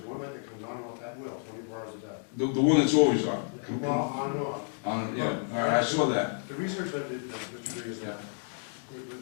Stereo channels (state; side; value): silent; right; 57 dB below the other